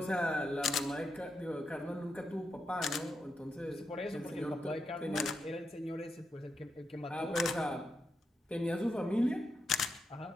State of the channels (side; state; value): both; normal; correlation 0.84